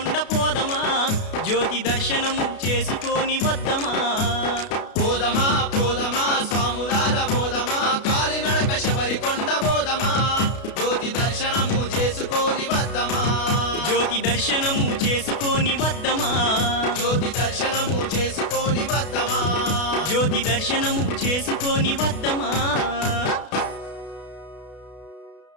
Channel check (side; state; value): right; late; 32 ms